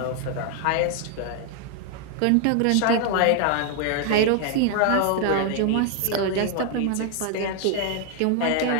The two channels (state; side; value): different; both; correlation 0.00